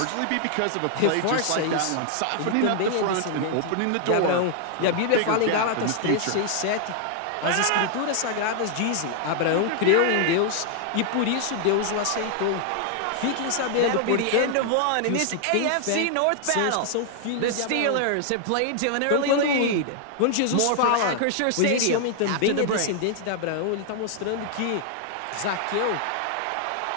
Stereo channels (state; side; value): different; both; correlation 0.00